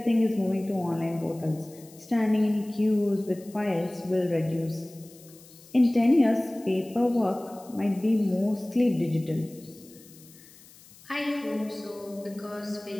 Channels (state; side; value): noise; left; hiss, 23 dB below the sound